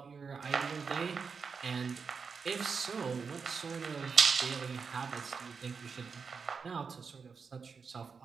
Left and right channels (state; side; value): quieter; left; 5.5 dB